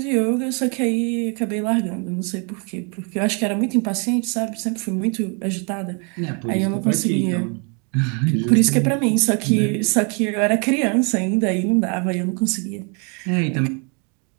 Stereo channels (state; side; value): quieter; left; 36.0 dB